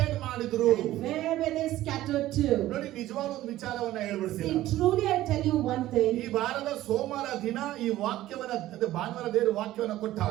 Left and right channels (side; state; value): left; quieter; 15.0 dB